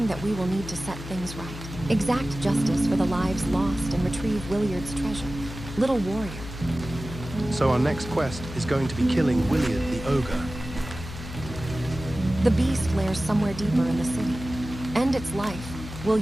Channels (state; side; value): noise; left; hum, 10 dB below the sound